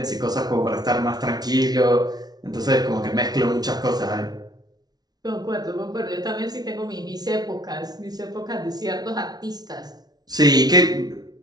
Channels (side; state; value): left; late; 0.19 ms